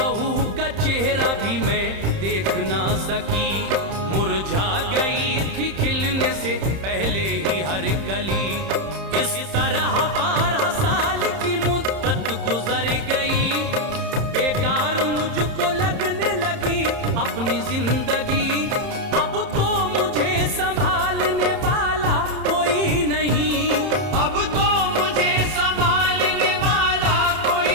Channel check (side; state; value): left; late; 30 ms